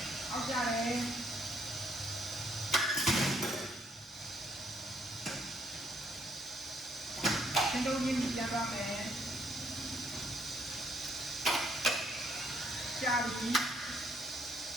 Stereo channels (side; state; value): both; normal; correlation 0.69